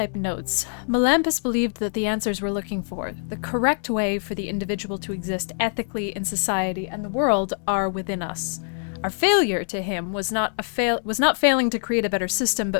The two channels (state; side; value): silent; right; digital silence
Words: notes. Melampus believed that the answers we're looking for, the correct way for the individual to exist ethically in society and the world, are within us. Our failure to him was not failing to create a better system,